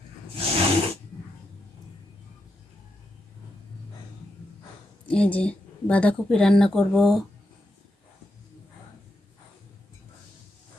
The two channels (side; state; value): both; normal; correlation 0.84